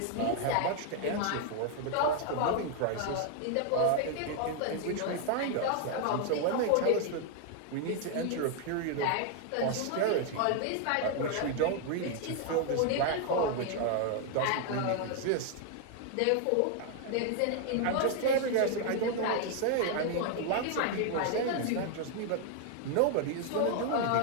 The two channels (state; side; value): different; both; correlation 0.00